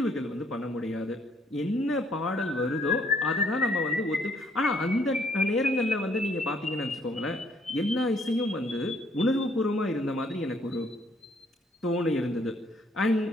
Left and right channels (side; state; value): both; normal; correlation 0.66